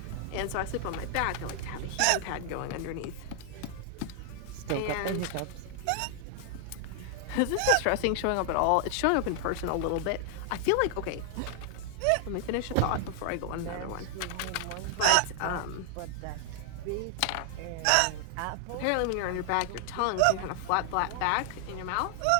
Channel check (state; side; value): different; both; correlation 0.00